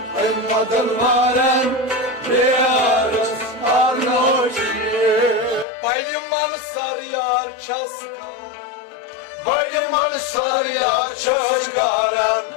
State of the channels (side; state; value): right; drops out; at 5.7 s